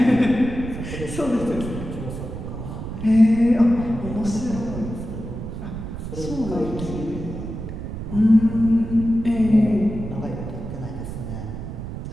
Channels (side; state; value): right; noise; rumble, 8 dB below the sound